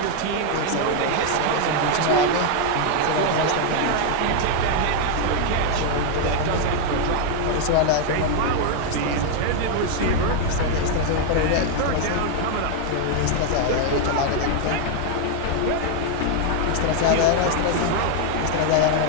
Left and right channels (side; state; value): both; different; correlation 0.00